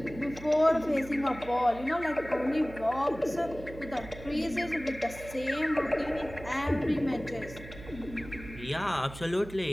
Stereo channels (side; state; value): right; noise; hum, 14 dB below the sound